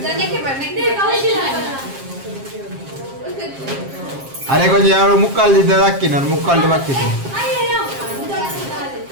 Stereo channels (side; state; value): left; late; 7.4 ms